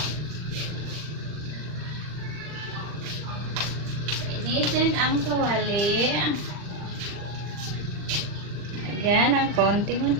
Initin ang kawali. Lagyan ng konting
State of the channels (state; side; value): late; left; 39 ms